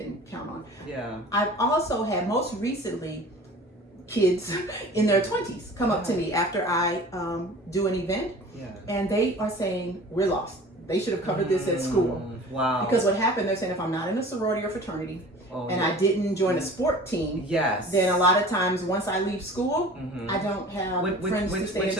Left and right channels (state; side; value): normal; both; correlation 0.43